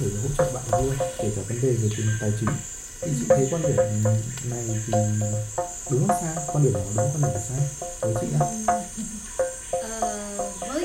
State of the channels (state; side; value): identical; both; correlation 1.00